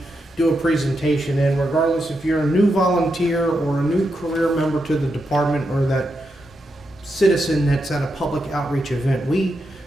do a presentation in, regardless if you're a new volunteer or a new career member to the department or that citizen that's at a public outreach event. We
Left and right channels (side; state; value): both; normal; correlation 0.84